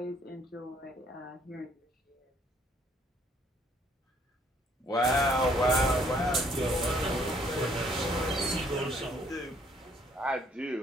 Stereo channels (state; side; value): normal; both; correlation 0.64